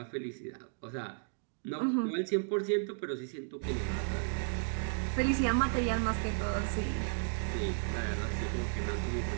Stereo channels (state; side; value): silent; left; digital silence